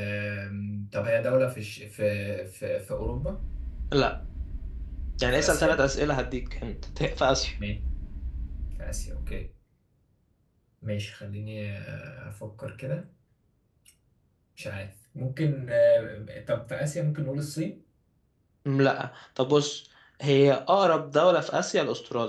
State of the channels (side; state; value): both; identical; correlation 1.00